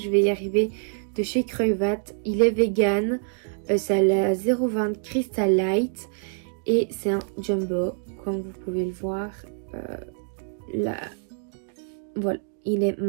vais y arriver, de chez Creuvat. Il est vegan, c'est la 0,20 Crystal Light et c'est un jumbo comme vous pouvez le voir. Là, voilà, il est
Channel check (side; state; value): left; silent; digital silence